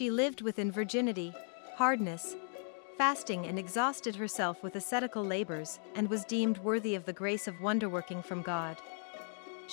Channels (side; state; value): right; silent; 54 dB below the other